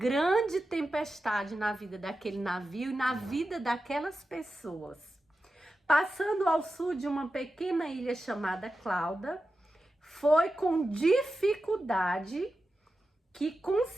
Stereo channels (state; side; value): normal; both; correlation 0.92